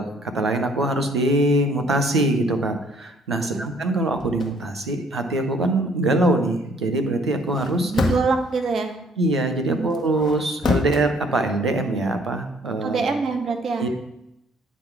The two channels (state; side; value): normal; both; correlation 0.61